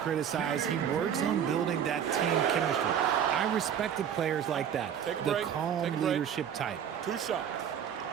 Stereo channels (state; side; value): quieter; left; 8.8 dB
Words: He works on building that team chemistry. I respected players like that. Take a the break. calm Take a break. leadership type. 2 shots.